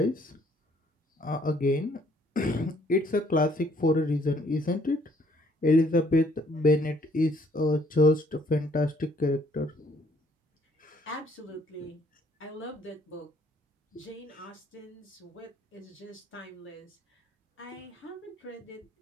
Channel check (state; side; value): normal; both; correlation 0.64